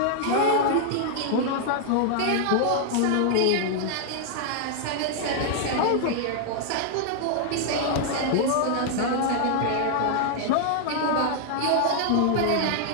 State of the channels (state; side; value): different; both; correlation 0.00